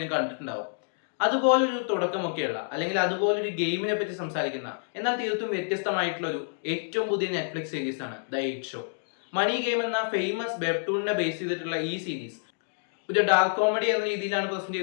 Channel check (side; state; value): right; silent; digital silence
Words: കണ്ടിട്ടുണ്ടാവും. അതുപോലൊരു തുടക്കമൊക്കെയുള്ള അല്ലെങ്കിൽ അതുപോലൊരു ഗെയിമിനെ പറ്റി സംസാരിക്കുന്ന എന്നാൽ തീർത്തും വ്യത്യസ്തമായിട്ടുള്ള ഒരു ഏറ്റവും പുതിയ നെറ്റ്ഫ്ലിക്സ് സീരീസ് ആണ് the eight show. Money game എന്ന ഫേമസ് വെബ്ടൂണിനെ ബേസ് ചെയ്തിട്ടുള്ള ഈ സീരീസ് ഒരു ഡാർക്ക് കോമഡി എന്ന രീതിയിലാണ് പ്രസന്റ്